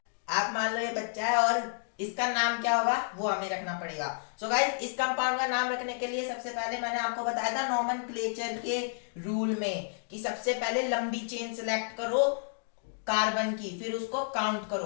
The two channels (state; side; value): silent; right; digital silence